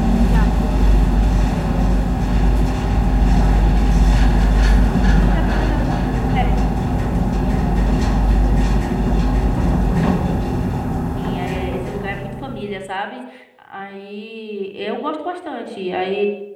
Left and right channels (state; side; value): identical; both; correlation 1.00